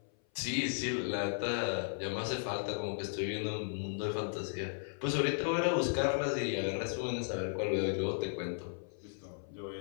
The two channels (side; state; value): right; silent; 54 dB below the other